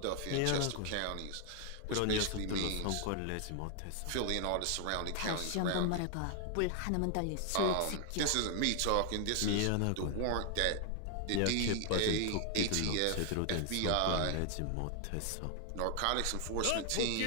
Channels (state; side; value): different; both; correlation 0.00